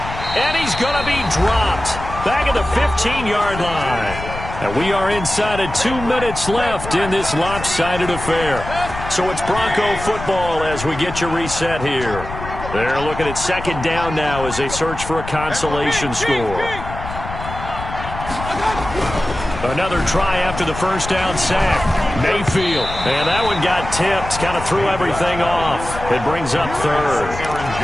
And he's going to be dropped back at the 15-yard line. And we are inside of 2 minutes left in this lopsided affair. So it's Bronco football as we get your reset here. They're looking at 2nd down now as they search for a consolation score. Another try after the 1st down sack. Mayfield. And that one got tipped. Kind of threw everything off. It brings up 3rd.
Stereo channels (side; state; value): left; noise; rumble, 9 dB below the sound